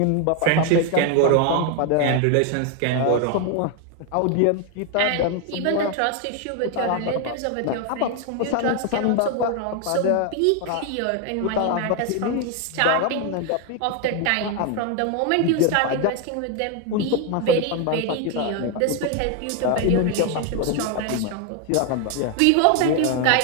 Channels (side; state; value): both; different; correlation 0.01